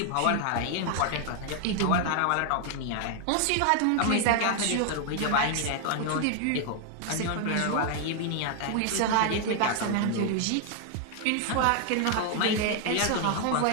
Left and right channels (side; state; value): both; different; correlation 0.00